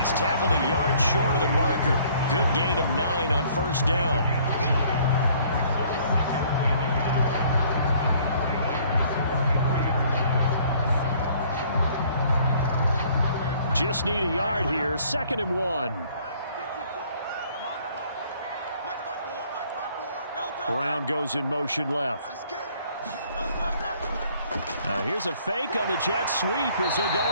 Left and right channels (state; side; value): inverted; both; correlation -0.59